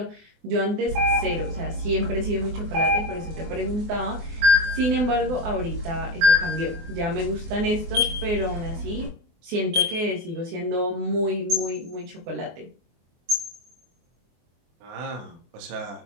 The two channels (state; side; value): late; left; 24 ms